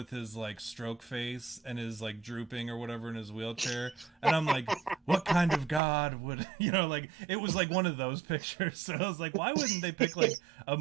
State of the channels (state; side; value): drops out; left; at 5.8 s